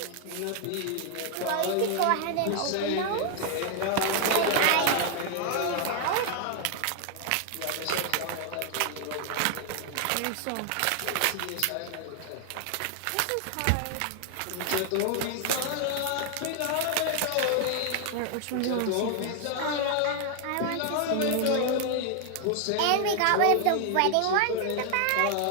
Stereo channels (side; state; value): both; different; correlation 0.00